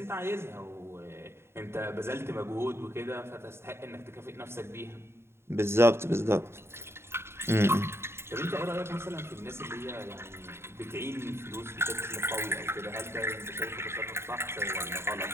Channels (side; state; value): left; late; 0.12 ms